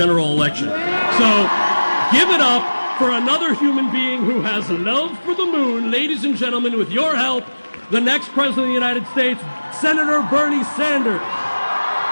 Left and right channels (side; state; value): both; inverted; correlation -1.00